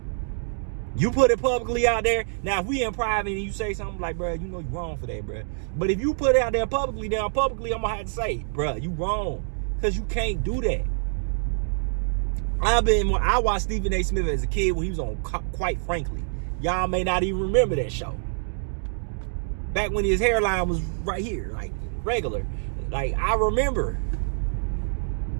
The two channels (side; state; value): left; silent; digital silence